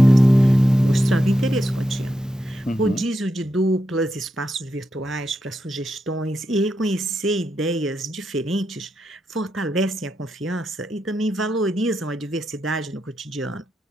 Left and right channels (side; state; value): both; normal; correlation 0.86